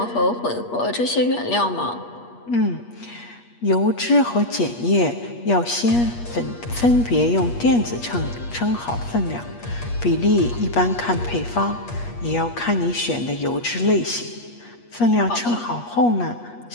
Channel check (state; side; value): late; right; 8.4 ms